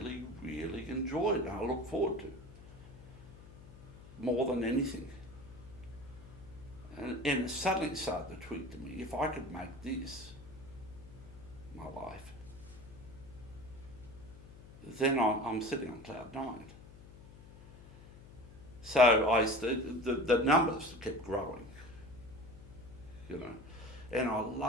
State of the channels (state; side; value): noise; left; hum, 18 dB below the sound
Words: really enjoyed and I look forward to. More than anything. And it suddenly started to tweet to me, if I could make this my life, then I'm sitting on cloud 9. So the numbers kept growing, and I